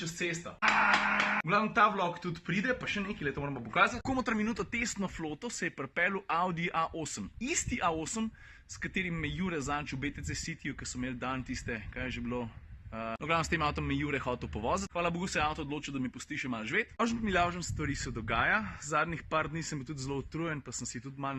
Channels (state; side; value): identical; both; correlation 1.00